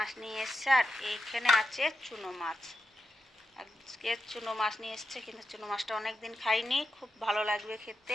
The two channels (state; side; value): normal; both; correlation 0.88